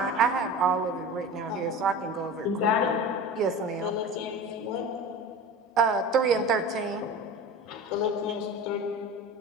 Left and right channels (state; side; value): normal; both; correlation 0.33